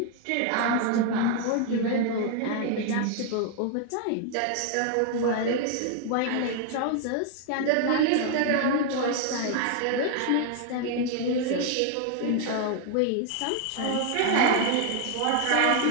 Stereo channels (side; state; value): both; different; correlation 0.00